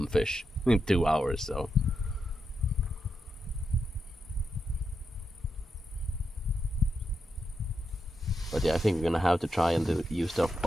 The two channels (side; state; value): both; normal; correlation 0.85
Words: fish in 2 hours. So but yeah, I think we're gonna have to try and use the